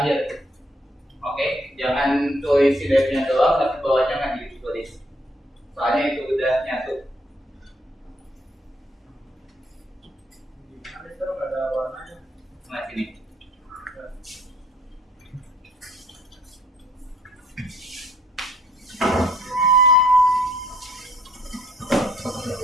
Oke, jangan tulis si devnya doang, tapi bawahnya nggak ditulis. Soalnya itu udah nyatu. Gimana, Sir? Nggak ada warnanya. Nah, sini.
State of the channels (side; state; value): both; normal; correlation 0.64